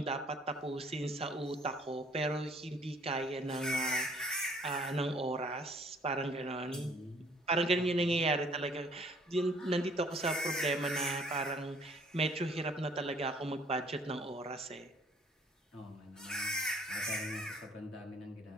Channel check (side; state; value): both; normal; correlation 0.59